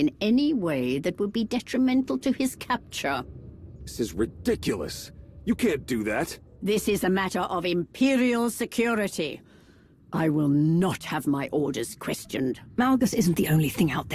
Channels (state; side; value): identical; both; correlation 1.00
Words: any way that would be detrimental to his capture. This is ridiculous. You can't do that. This is a matter of Imperial security. I will not have my orders questioned. Malgus isn't the only thing out